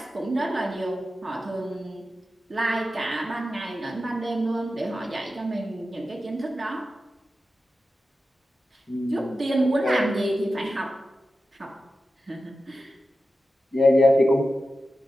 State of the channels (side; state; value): both; normal; correlation 0.92